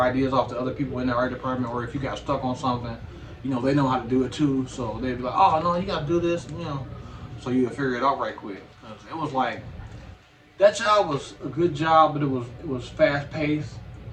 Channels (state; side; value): identical; both; correlation 1.00